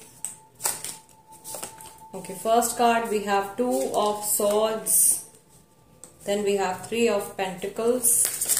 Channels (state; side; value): identical; both; correlation 1.00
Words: Okay, first card we have 2 of swords, then we have 3 of pentacles.